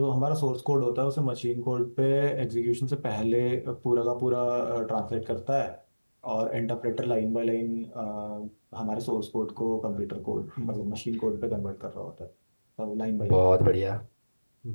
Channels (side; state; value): both; inverted; correlation -1.00